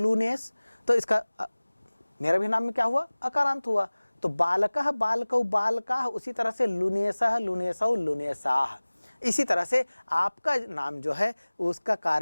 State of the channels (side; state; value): both; inverted; correlation -1.00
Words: तो इसका मेरा भी नाम में क्या हुआ, अकारांत हुआ। तो बालकः, बालकौ, बालकाः, उसी तरह से लुनेसः, लुनेसौ, लुनेसाः। इसी तरह से आपका नाम जो है उसका